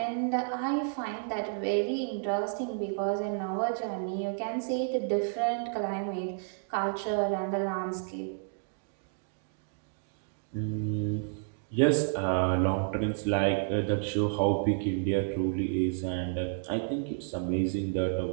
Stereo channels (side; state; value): left; silent; digital silence